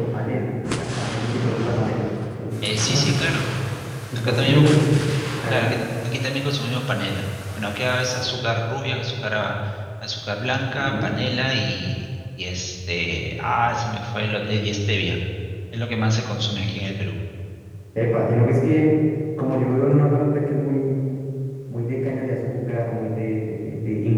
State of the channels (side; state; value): both; identical; correlation 1.00